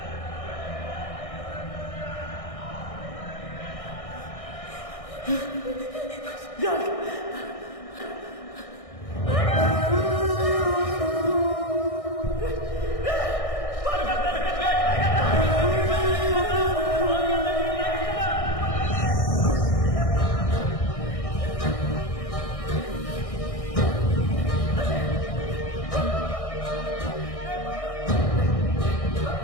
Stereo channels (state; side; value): late; right; 1.6 ms